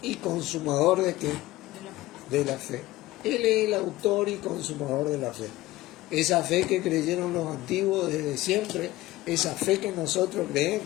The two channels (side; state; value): right; quieter; 17.2 dB